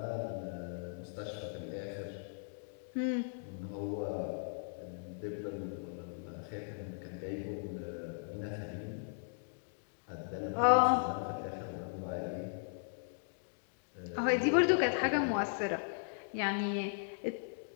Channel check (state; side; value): silent; right; digital silence